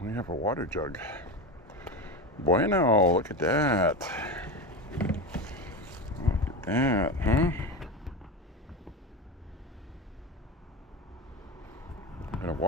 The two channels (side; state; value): both; normal; correlation 0.23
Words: We have a water jug. Bueno, look at that. Look at that, huh? And a